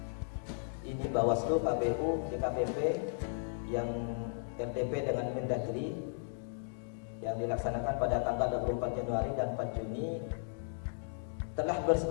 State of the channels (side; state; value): right; silent; digital silence